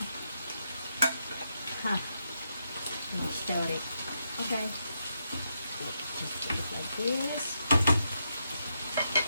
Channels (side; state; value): both; inverted; correlation -0.82